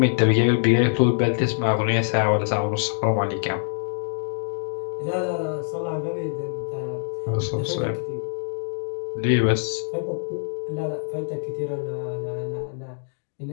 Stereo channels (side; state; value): right; silent; digital silence